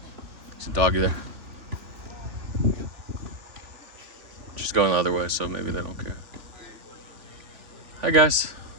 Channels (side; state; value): left; late; 3.4 ms